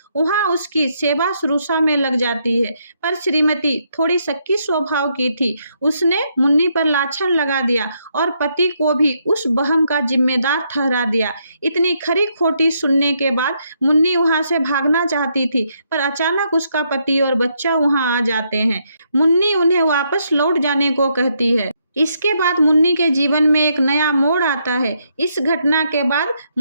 वहां उसकी सेवा शुश्रूषा में लग जाती है, पर श्रीमती थोड़ी शक्की स्वभाव की थी। उसने मुन्नी पर लाछन लगा दिया और पति को भी उस बहम का जिम्मेदार ठहरा दिया। इतनी खरी खोटी सुनने के बाद मुन्नी वहां से भागना चाहती थी, पर अचानक उसका पति और बच्चा वहां आ जाते हैं। मुन्नी उन्हें वापस लौट जाने को कहती है। इसके बाद मुन्नी के जीवन में एक नया मोड़ आता है। इस घटना के बाद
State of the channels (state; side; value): inverted; both; correlation -0.76